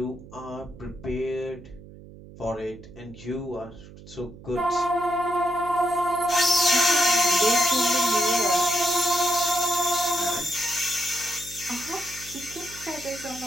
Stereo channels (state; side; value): noise; right; hum, 18 dB below the sound